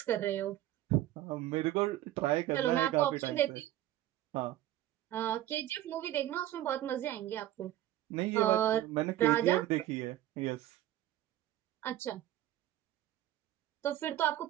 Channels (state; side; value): quieter; left; 13.7 dB